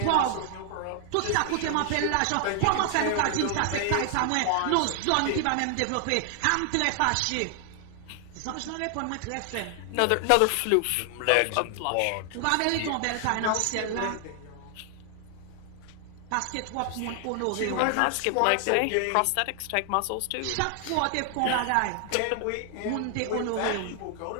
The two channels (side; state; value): both; different; correlation 0.00